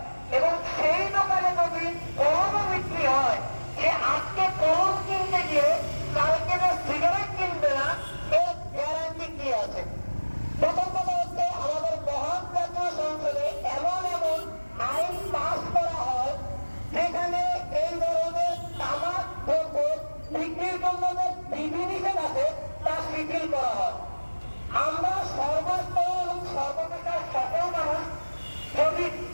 এবং সেই দোকানে যদি কলমও বিক্রি হয়, সে আজকে কলম কিনতে গিয়ে কালকে যে সিগারেট কিনবে না, এর গ্যারান্টি কি আছে? প্রথম কথা হচ্ছে, আমাদের মহান জাতীয় সংসদে এমন এমন আইন পাস করা হয় যেখানে এই ধরনের তামাক দ্রব্য বিক্রির জন্য যে বিধিনিষেধ আছে তা শিথিল করা হয়। আমরা সর্বস্তর এবং সর্বপ্রকার সকল মানুষ যদি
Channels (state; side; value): inverted; both; correlation -1.00